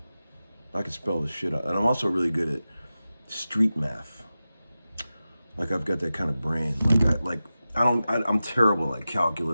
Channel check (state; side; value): inverted; both; correlation -0.94